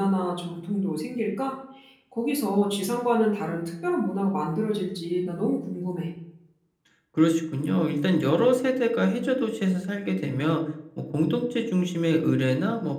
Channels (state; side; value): identical; both; correlation 1.00